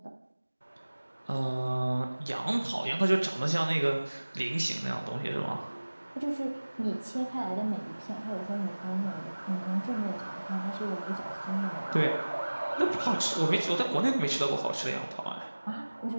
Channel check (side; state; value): both; inverted; correlation -1.00